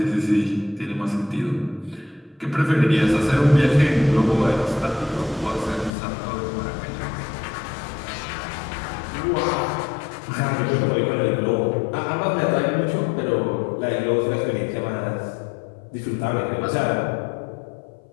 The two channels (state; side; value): drops out; right; at 5.9 s